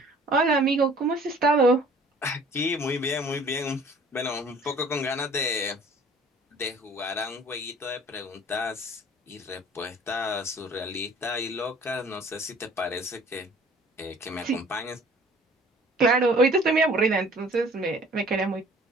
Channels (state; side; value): normal; both; correlation 0.52